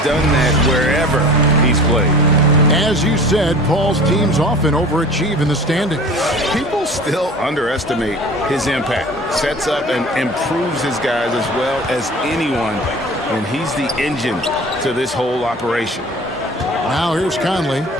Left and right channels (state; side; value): normal; both; correlation 0.42